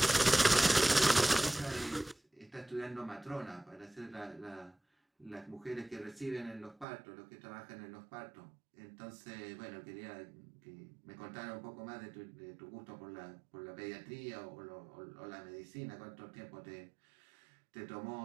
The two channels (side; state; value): left; drops out; at 6.9 s